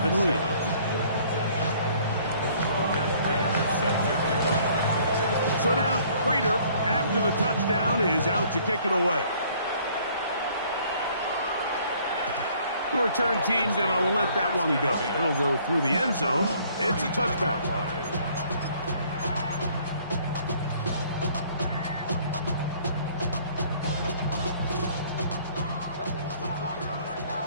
lead. So now Prater, after the touchdown, is out to kick it away. The return team's going to let that one go. It'll go through the end zone. It's a touchback.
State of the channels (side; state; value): both; inverted; correlation -0.59